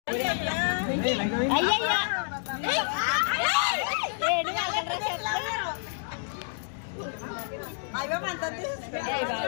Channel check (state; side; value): silent; right; digital silence